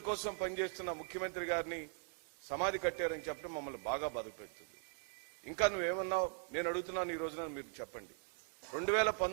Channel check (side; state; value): left; silent; 51 dB below the other